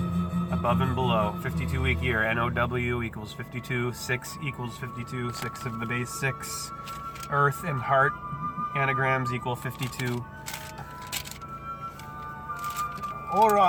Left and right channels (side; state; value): both; identical; correlation 1.00